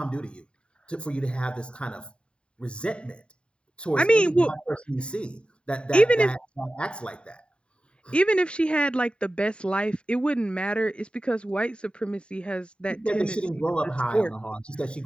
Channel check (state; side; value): late; right; 0.054 ms